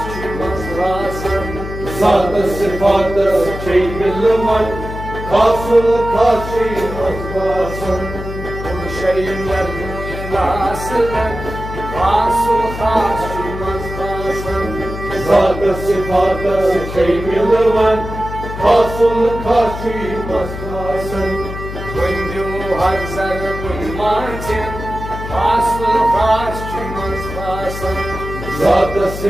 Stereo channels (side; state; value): left; noise; hum, 8 dB below the sound